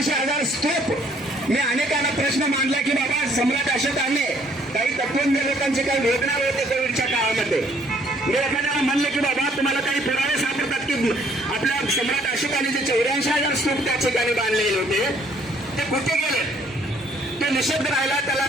स्तूप मी अनेकांना प्रश्न मांडला की बाबा सम्राट अशोकाने काही तत्वज्ञ लोकांचे काही वेदना होते कोविडच्या काळामध्ये। मी एखाद्याला म्हणले की बाबा तुम्हाला काही पुरावे सापडतात की आपल्या सम्राट अशोकाने जे 84,000 स्तूप त्या ठिकाणी बांधलेले होते ते कुठे गेले, ते निषेध राहिला, त्याला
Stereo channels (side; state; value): both; normal; correlation 0.63